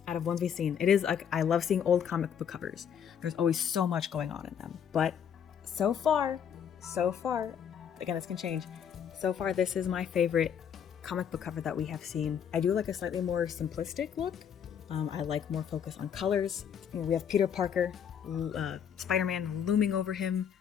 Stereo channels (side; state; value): right; quieter; 8.2 dB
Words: out of ones we've seen, it is like, I love seeing old comic book covers. There's always so much going on in them. But so far, again, this can change. So far, this is my favorite comic book cover that we have seen. I do like a slightly more simplistic look. I like more focus on colors. We have Peter Parker, Spider-Man looming over him,